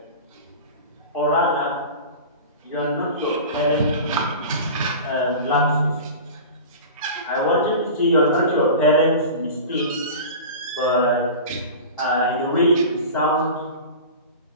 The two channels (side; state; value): both; inverted; correlation -0.33